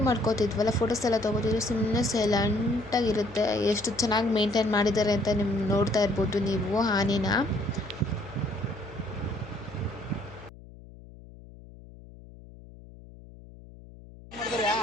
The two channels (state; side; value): noise; left; hum, 19 dB below the sound